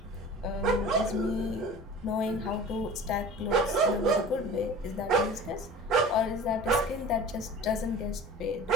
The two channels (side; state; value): both; normal; correlation 0.39